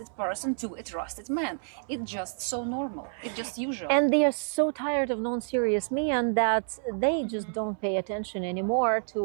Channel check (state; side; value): silent; left; 58 dB below the other